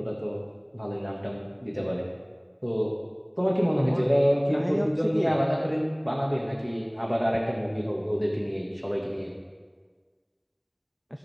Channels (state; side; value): identical; both; correlation 1.00